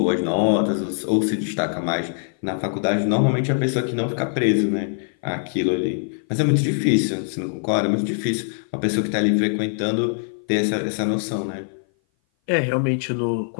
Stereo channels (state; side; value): silent; right; 57 dB below the other